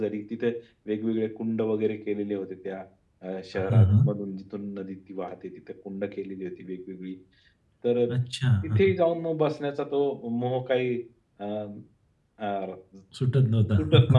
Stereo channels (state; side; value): identical; both; correlation 1.00